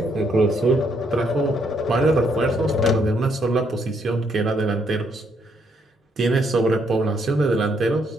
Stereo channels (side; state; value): both; normal; correlation 0.72